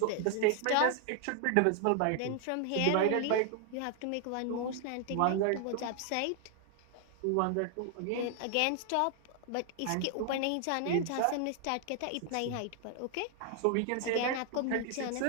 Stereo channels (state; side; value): different; both; correlation 0.00